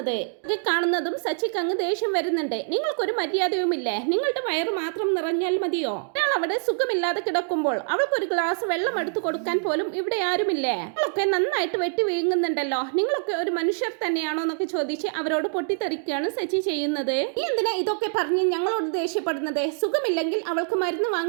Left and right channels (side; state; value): left; silent; digital silence